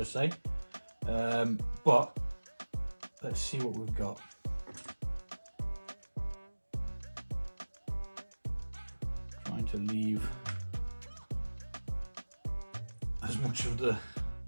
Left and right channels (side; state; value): both; inverted; correlation -1.00